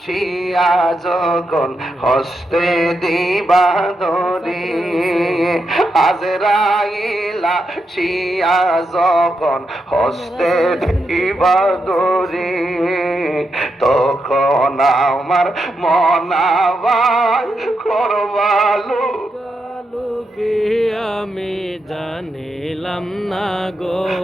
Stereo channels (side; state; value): both; normal; correlation 0.84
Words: শিয়া যখন হস্তে দিবা ধরি, আজরাইলা শিয়া যখন হস্তে দিবা ধরি, তখন আমার মনাবাই করবালু আমি জানিলাম না গো